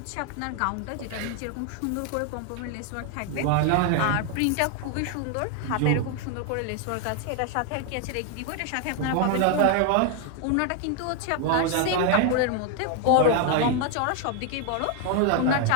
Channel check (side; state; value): both; different; correlation 0.00